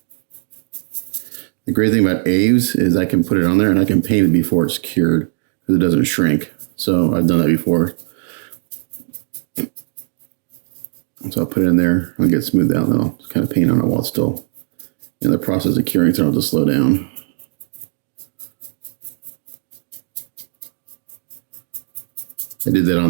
The great thing about A's is I can put it on there and I can paint it before it's cured because it doesn't shrink. So I've done that before. So I'll put it in there, I'll get it smoothed out, and then I'll just kind of paint on it while it's still in the process of curing, so I'll just slow down. I did that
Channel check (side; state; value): left; silent; digital silence